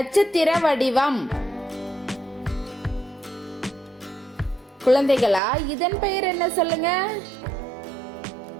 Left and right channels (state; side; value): drops out; left; at 5.4 s